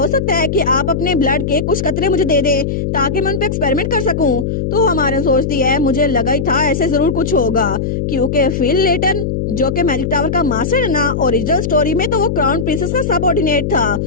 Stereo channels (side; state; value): left; noise; hum, 1 dB below the sound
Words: सकता है कि आप अपने ब्लड के कुछ कतरे मुझे दे दे ताकि मैं उन पे एक्सपेरिमेंट कर सकूं? तो हमारे सोचती है मुझे लगा ही था ऐसे जरूर कुछ होगा, क्योंकि फिल लेटन जो कि मैजिक टावर का मास्टर है ना, ओरिजिनल स्टोरी में तो वो क्राउन प्रिंसेस का सबऑर्डिनेट था,